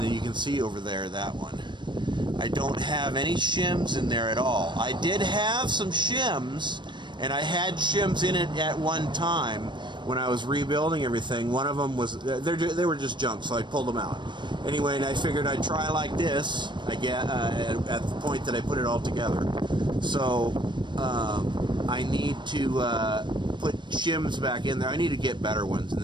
you can see over there that one, I don't have any shims in there at all. I did have some shims, and I had shims in it at one time when I was rebuilding everything. One of them was, they were just junk, so I pulled them out. Anyway, and I figured I'd try like this, at the point that I put it all together. So, I need to put shims back in there. I need to get better ones and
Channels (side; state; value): left; late; 0.22 ms